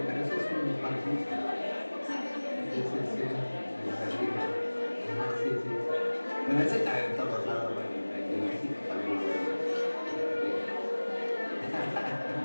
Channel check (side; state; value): both; inverted; correlation -1.00